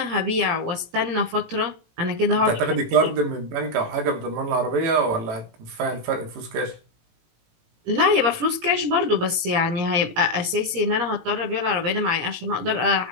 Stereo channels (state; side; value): late; left; 18 ms